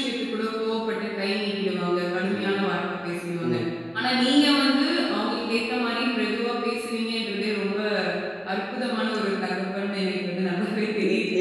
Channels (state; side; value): identical; both; correlation 1.00